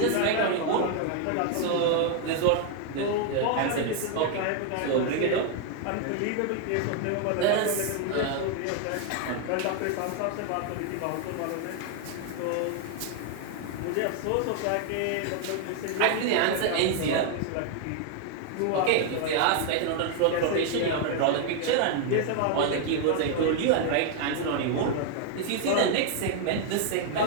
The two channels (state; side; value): different; both; correlation 0.00